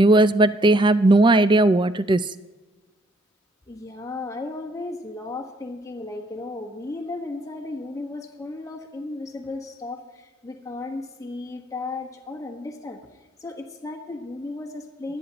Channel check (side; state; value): both; normal; correlation 0.67